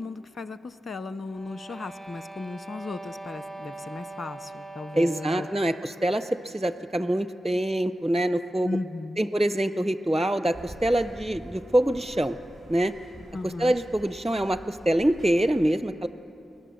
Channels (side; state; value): both; normal; correlation 0.93